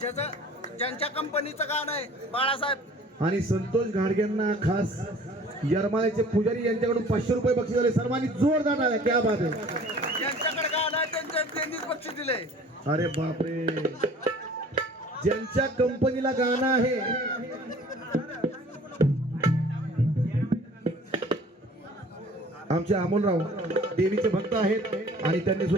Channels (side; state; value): both; normal; correlation 0.49